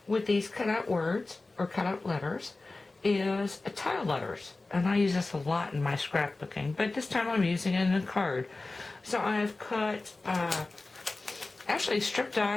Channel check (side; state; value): right; quieter; 3.3 dB